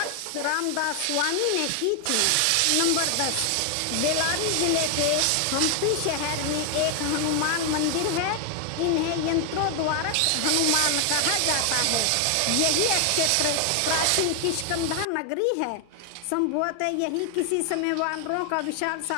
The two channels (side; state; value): both; different; correlation 0.00